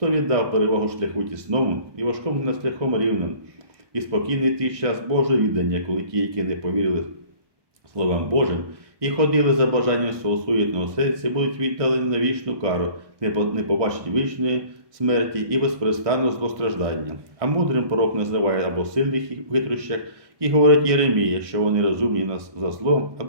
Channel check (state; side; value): late; left; 1.5 ms